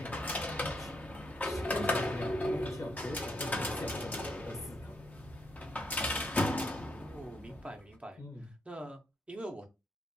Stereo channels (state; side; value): normal; both; correlation 0.78